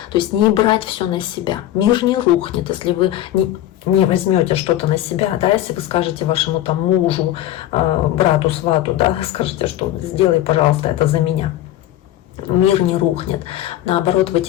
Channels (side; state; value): right; quieter; 13.4 dB